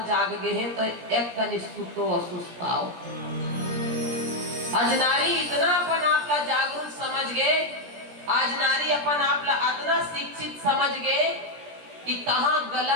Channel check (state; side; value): late; left; 17 ms